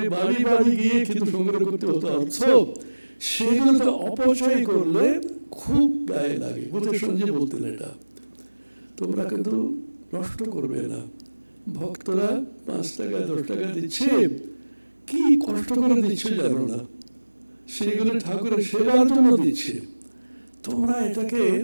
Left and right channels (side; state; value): both; inverted; correlation -1.00